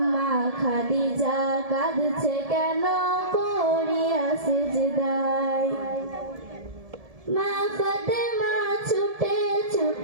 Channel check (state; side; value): late; left; 1.7 ms